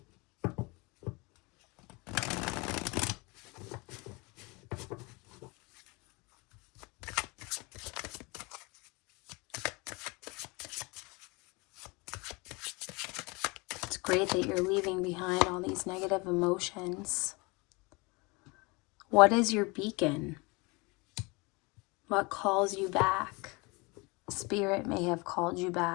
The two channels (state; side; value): quieter; right; 27.1 dB